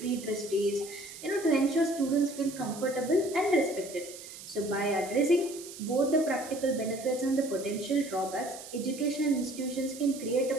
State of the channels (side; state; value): right; noise; hiss, 14 dB below the sound